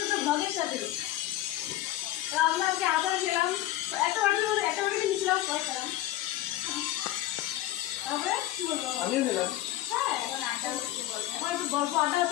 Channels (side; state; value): right; quieter; 14.7 dB